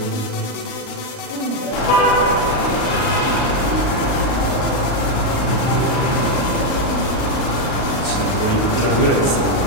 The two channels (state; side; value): late; right; 39 ms